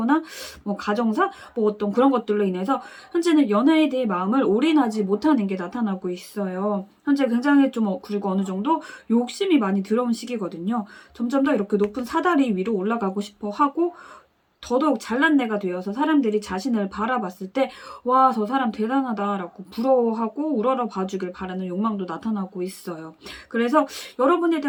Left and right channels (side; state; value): both; identical; correlation 1.00